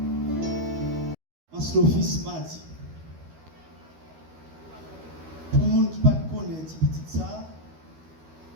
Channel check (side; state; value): left; late; 13 ms